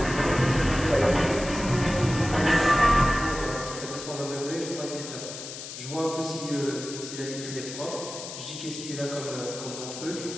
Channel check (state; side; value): noise; left; hiss, 10 dB below the sound